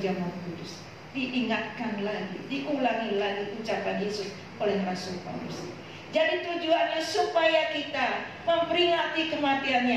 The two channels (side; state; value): both; identical; correlation 1.00